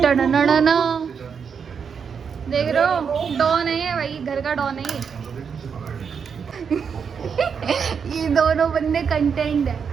देख रहे हो, डॉन है ये भाई, घर का डॉन है ये दोनों बंदे कंटेंट है,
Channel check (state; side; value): quieter; left; 6.5 dB